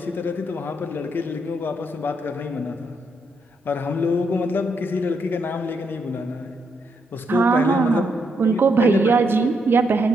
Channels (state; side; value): normal; both; correlation 0.78